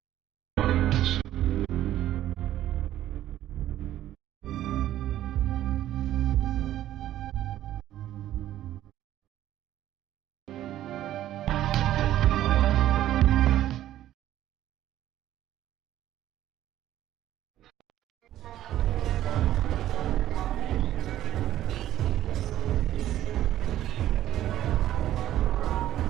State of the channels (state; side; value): quieter; left; 12.9 dB